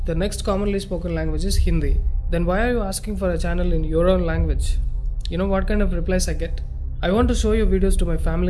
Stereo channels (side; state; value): both; identical; correlation 1.00